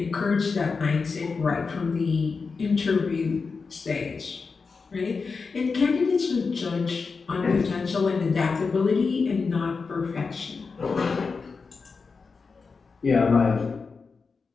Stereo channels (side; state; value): right; quieter; 4.8 dB